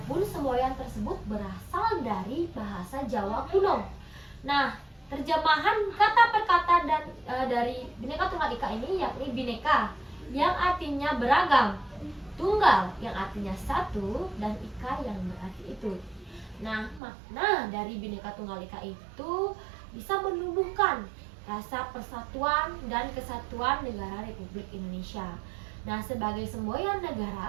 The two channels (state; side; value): drops out; left; at 17.0 s